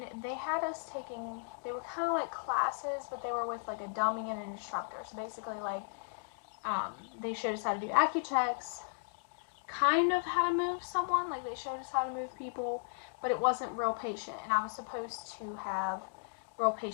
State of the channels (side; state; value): right; silent; digital silence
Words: they had us taking, they were kind of like classes, but they were with like a dummy and an instructor. So basically they showed us how to do Accu-Checks, kind of how to move someone, like they showed us how to move people, but it wasn't real patient, and I was supposed to have real